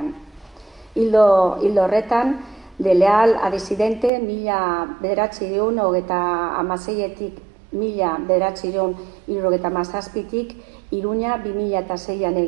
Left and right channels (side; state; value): left; drops out; at 4.1 s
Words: Hildo horretan, de leal a disidente, 1936-etik 1937-tik, Iruña 2006an